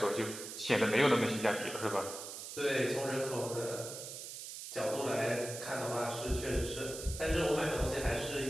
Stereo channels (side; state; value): right; noise; hiss, 9 dB below the sound